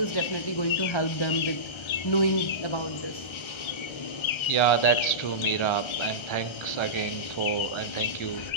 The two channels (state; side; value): late; right; 1.3 ms